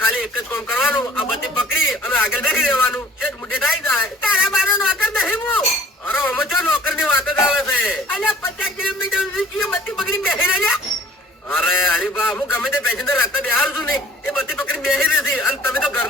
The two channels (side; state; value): both; normal; correlation 0.54